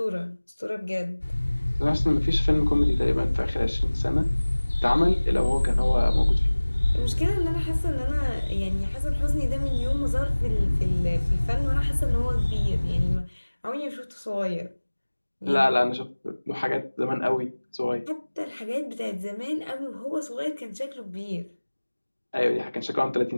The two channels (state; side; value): inverted; both; correlation -1.00